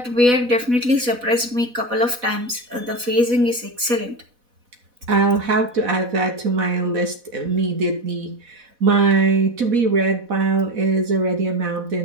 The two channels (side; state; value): left; late; 4.1 ms